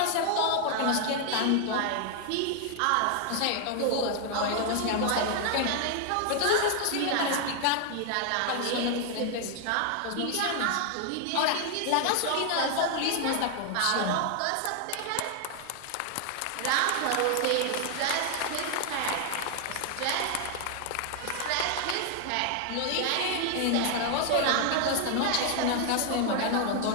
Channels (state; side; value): different; both; correlation 0.00